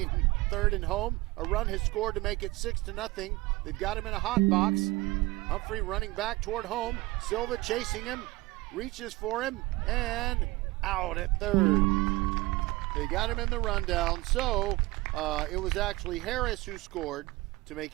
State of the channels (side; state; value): left; quieter; 21.5 dB